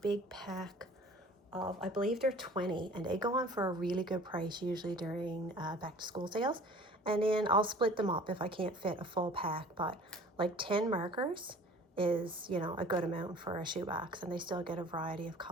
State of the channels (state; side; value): normal; both; correlation 0.47